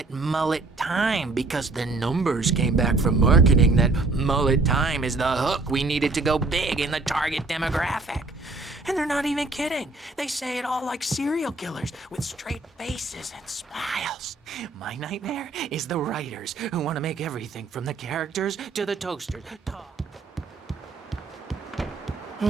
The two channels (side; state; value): left; quieter; 3.5 dB